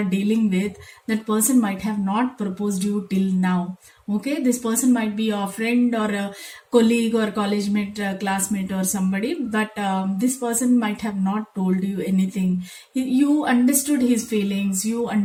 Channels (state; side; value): identical; both; correlation 1.00